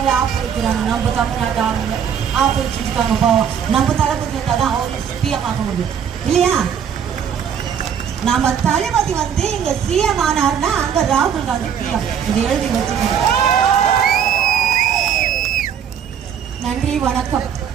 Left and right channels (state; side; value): quieter; left; 8.2 dB